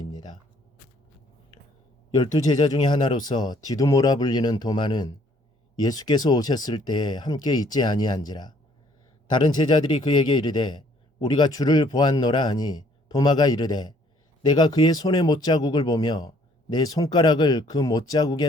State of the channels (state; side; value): normal; both; correlation 0.62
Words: 12제자 중에 하나로서 디두모라 불리는 도마는 예수께서 오셨을 때에 함께 있지 아니한지라. 다른 제자들이 그에게 이르되 우리가 주를 보았노라 하니 도마가 이르되 내가 그의 손의 못자국을 보며 내 손가락을 그